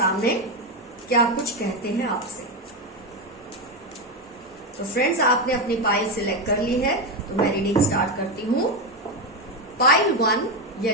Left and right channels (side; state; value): both; normal; correlation 0.11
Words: क्या कुछ कहते हैं आपसे। तो फ्रेंड्स, आपने अपनी पाइल सिलेक्ट कर ली है, तो मैं रीडिंग स्टार्ट करती हूं। पाइल 1